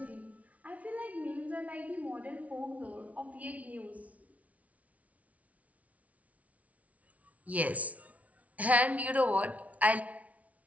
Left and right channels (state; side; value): late; left; 0.068 ms